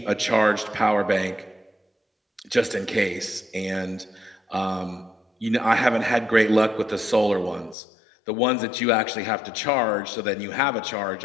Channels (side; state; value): right; drops out; at 7.8 s